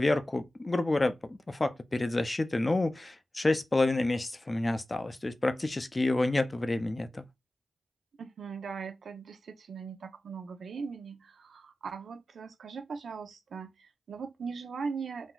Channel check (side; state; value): both; normal; correlation 0.96